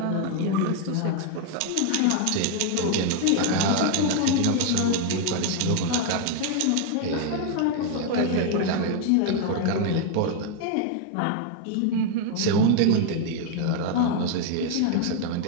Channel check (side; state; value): both; different; correlation 0.00